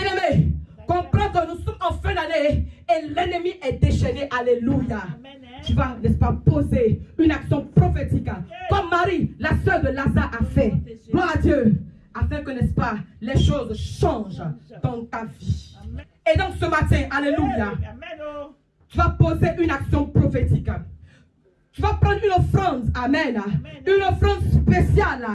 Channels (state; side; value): identical; both; correlation 1.00